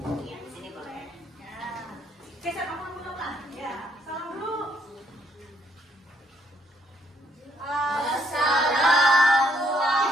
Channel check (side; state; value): both; normal; correlation 0.70